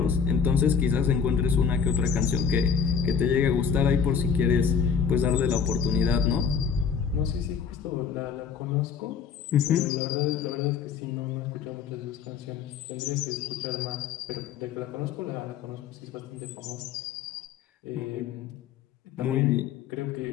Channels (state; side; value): quieter; right; 6.7 dB